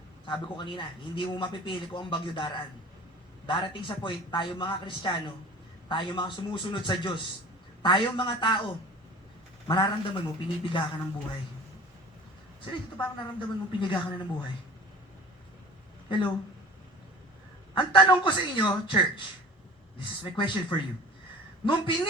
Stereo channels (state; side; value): normal; both; correlation 0.41